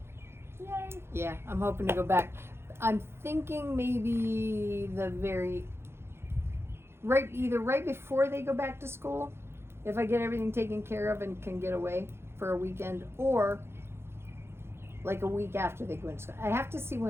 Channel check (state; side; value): late; left; 0.12 ms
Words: Yay. yeah, I'm hoping to go back. I'm thinking maybe either right before they go back to school, if I get everything taken care of and can get away for a weekend, or like a week after they go into school. I have to see